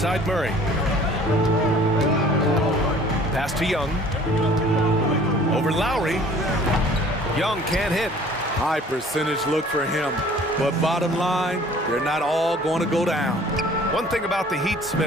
Murray. Pass to Young. Over Lowry. Young can't hit. High percentage look for him. But bottom line, they're not all going to go down. One thing about the Heat,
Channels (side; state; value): both; normal; correlation 0.51